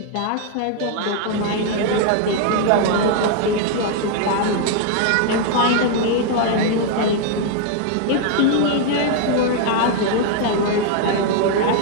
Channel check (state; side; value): different; both; correlation 0.00